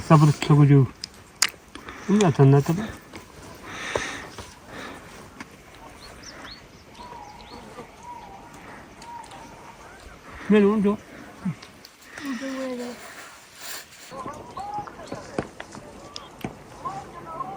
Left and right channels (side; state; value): both; identical; correlation 1.00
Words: sabır sokucu. Bunu zaten ne tabi? Ben onu diyor.